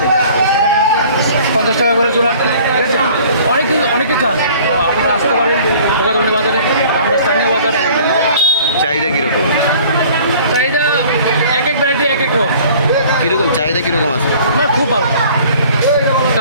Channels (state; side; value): inverted; both; correlation -0.51